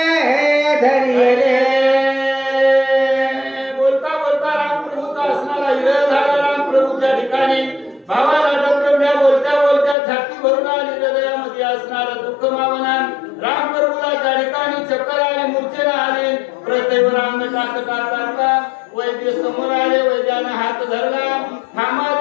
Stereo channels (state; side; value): drops out; right; at 10.0 s